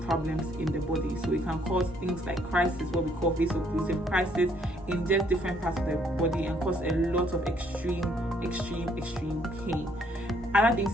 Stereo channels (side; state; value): both; normal; correlation 0.66